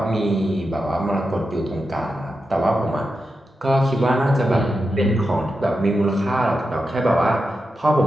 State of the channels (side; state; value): both; normal; correlation 0.89